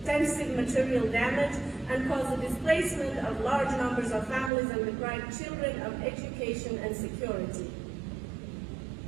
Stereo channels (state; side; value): drops out; left; at 4.5 s